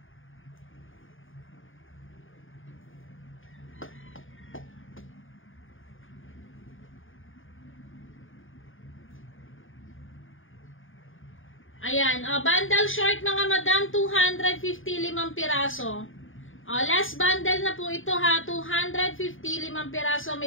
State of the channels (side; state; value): right; late; 0.58 ms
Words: Ayan, bundle short mga madam, 255 piraso. Last bundle na po ito ha, 255 piraso,